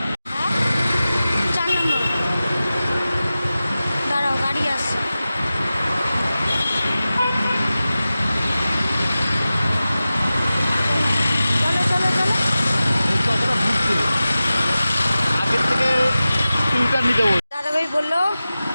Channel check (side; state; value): both; inverted; correlation -0.95